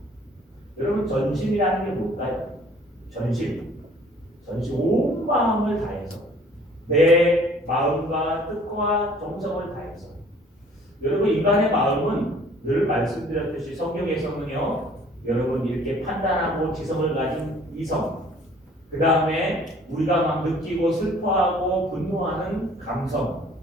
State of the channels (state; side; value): normal; both; correlation 0.55